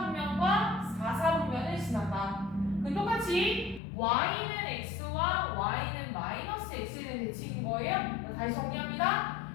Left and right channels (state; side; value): drops out; right; at 3.8 s